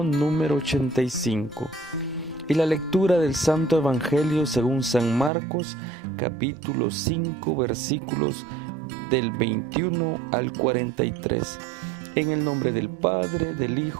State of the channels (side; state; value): left; drops out; at 5.3 s